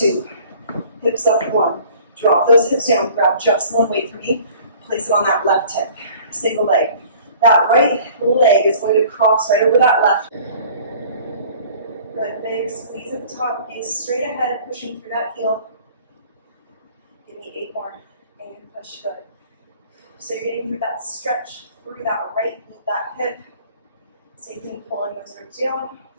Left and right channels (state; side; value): inverted; both; correlation -0.50